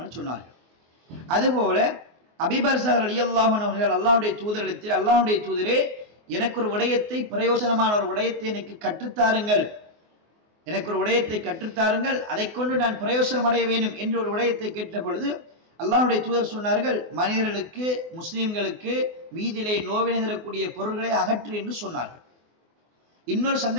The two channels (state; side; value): late; left; 24 ms